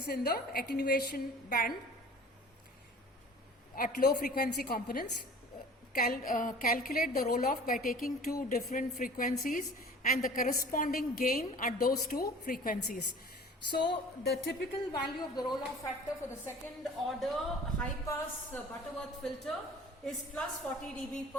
in the attenuation band at low frequency components. Calculate the roll off by taking 2 different frequencies and the corresponding gain at those 2 frequencies. So the typical value of the roll off factor for the second order high pass Butterworth filter is plus 40 dB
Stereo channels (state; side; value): normal; both; correlation 0.44